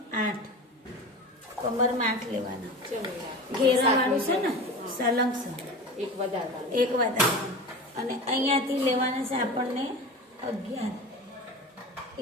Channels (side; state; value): both; normal; correlation 0.31